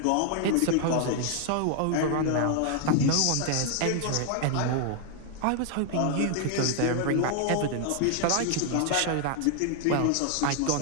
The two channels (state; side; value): different; both; correlation 0.00